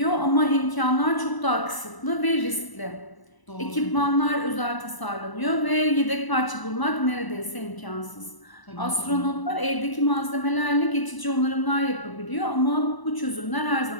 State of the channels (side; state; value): right; late; 1.0 ms